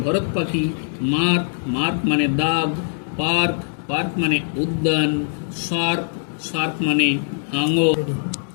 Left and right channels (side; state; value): right; silent; digital silence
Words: ভরত পাখি। মার্ক, মার্ক মানে দাগ। পার্ক, পার্ক মানে উদ্যান। শার্ক, শার্ক মানে হাঙর।